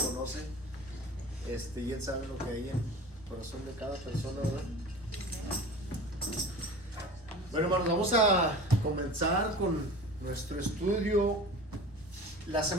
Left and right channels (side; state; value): both; normal; correlation 0.37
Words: y Él sabe lo que hay en el corazón de cada persona, ¿verdad? Bueno, hermanos, vamos a comenzar con nuestro estudio. La